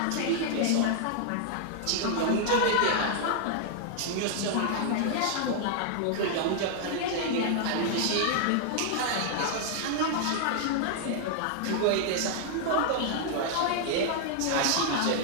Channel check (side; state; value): both; different; correlation -0.01